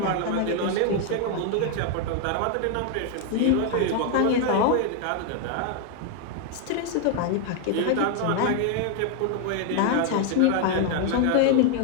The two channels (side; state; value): both; different; correlation 0.00